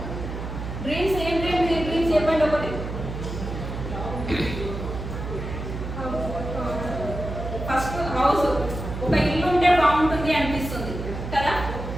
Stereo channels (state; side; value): noise; right; hum, 7 dB below the sound